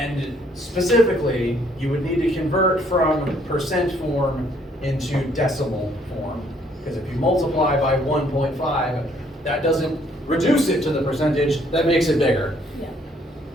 specifically, you would need to convert from percent form into decimal form, because if you multiply by 1.5, that doesn't reduce it to the percentage, that makes it bigger. Yeah.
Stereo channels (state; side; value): normal; both; correlation 0.65